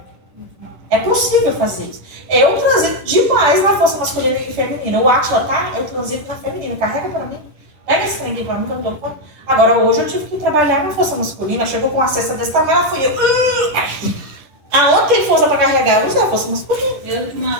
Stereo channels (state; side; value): late; left; 10 ms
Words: É possível fazer isso. Eu transito demais na força masculina e feminina. O Átila, tá? Eu transito na feminina. Carrega pra mim. Pega esse trem aqui pra mim que eu não dou conta. Agora, hoje eu tive que trabalhar na força masculina. Chegou com uma cesta desse tamanho, ela fui eu. Aonde tem força pra carregar? Eu usei a força masculina. Eu,